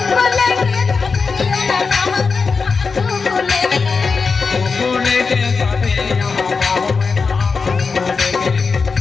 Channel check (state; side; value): quieter; right; 4.8 dB